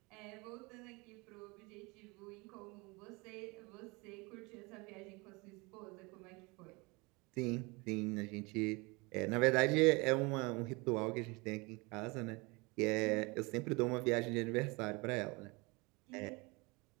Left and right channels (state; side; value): quieter; left; 26.6 dB